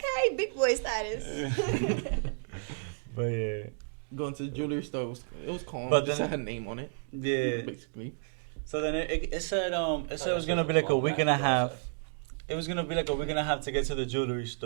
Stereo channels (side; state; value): left; silent; digital silence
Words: big boy status. But yeah, Going to the jewelry store, it was calm. But Just then- had her name on it, yeah. basically. So then it said it was gonna be like a week and a half. It was gonna be like a week and a half to get to the jewelry